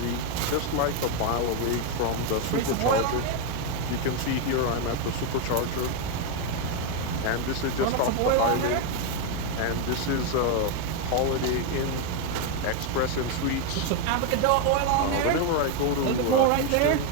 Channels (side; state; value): both; different; correlation 0.02